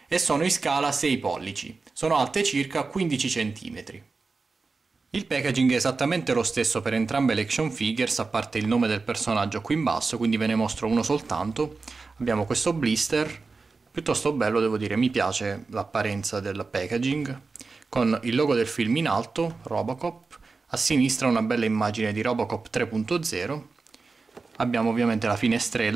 e sono in scala 6 pollici, sono alte circa 15 cm. Il packaging è esattamente lo stesso per entrambe le action figures, a parte il nome del personaggio qui in basso, quindi ve ne mostro uno soltanto. Abbiamo questo blister, piuttosto bello devo dire, mi piace l'apparenza del packaging, con il logo del film in alto, Robocop, a sinistra una bella immagine di Robocop 3.0, abbiamo ovviamente la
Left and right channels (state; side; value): quieter; left; 4.1 dB